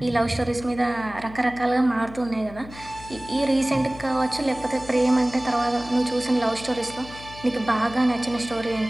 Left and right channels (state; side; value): noise; left; hum, 17 dB below the sound